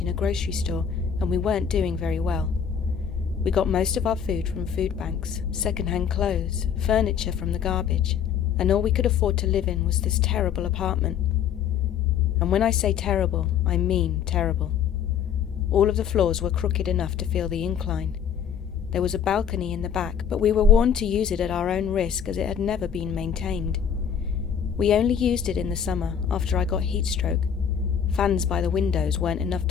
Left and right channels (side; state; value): right; quieter; 8.0 dB